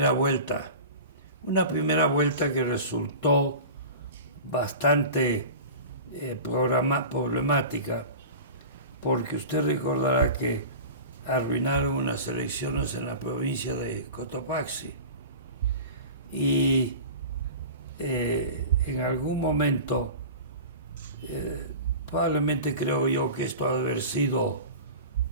vuelta, una primera vuelta que resultó bastante problemática, porque usted recordará que arruinaron unas elecciones en la provincia de Cotopaxi y en algún momento, probablemente creo yo que esto ha de haber sido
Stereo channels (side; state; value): both; inverted; correlation -0.34